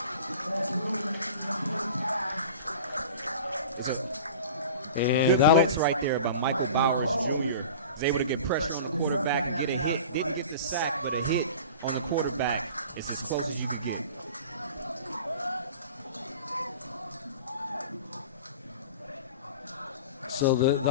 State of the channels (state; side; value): inverted; both; correlation -0.37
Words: And Good that'll, blitz right there by Michael Bowers Jr. Was able to get pressure on the quarterback and get a hit. Didn't get the sack, but a hit on the quarterback is as close as you can get. so